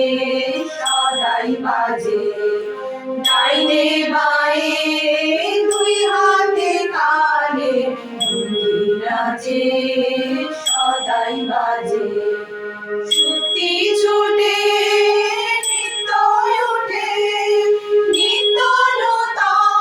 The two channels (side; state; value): both; identical; correlation 1.00